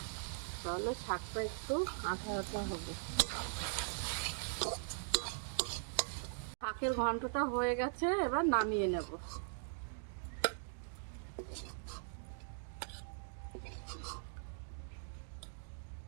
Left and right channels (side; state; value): left; silent; digital silence